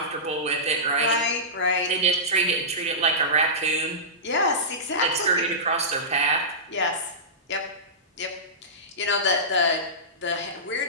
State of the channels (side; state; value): both; normal; correlation -0.17